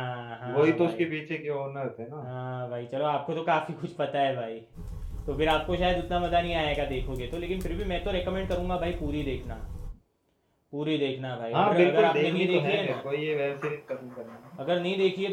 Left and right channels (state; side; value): identical; both; correlation 1.00